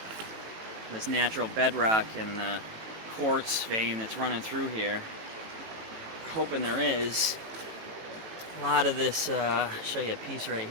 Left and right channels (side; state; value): left; late; 18 ms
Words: this natural bedrock and the quartz vein that's running through here. Hoping there is. A lot of this, I'll show you a piece right